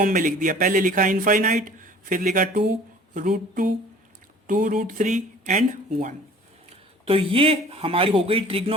में लिख दिया। पहले लिखा इनफाइनाइट, फिर लिखा 2, √2, 2√3 एंड 1। तो ये हमारी हो गई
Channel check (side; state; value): both; normal; correlation 0.49